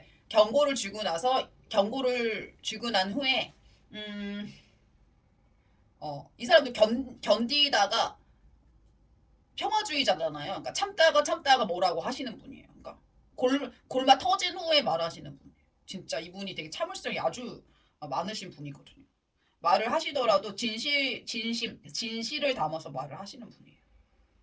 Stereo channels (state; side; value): identical; both; correlation 1.00